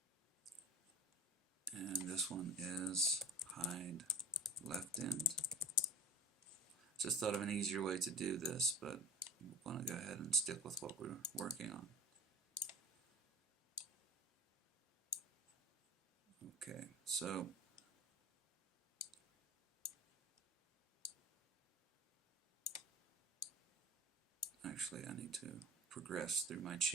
And this one is hide left end. Just thought of an easier way to do this, but we want to go ahead and stick with what we're working on. Okay, so actually I need to progress through my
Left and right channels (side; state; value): both; normal; correlation 0.38